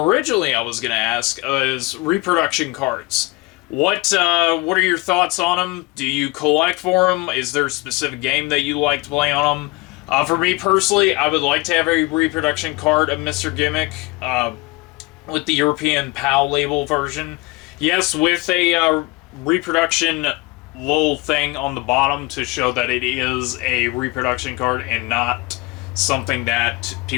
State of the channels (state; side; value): quieter; right; 23.9 dB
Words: I was going to ask is reproduction cards. What are your thoughts on them? Do you collect for them? Is there a specific game that you like to play on them? For me personally, I would like to have a reproduction card of Mr. Gimmick with the European PAL label version. Yes, with a reproduction little thing on the bottom to show that it is a reproduction card and not something that